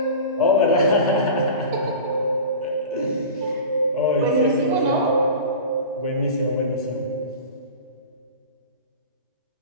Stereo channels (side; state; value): both; inverted; correlation -0.34